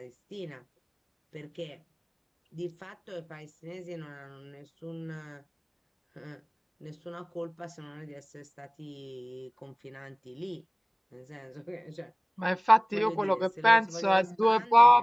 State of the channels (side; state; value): both; identical; correlation 1.00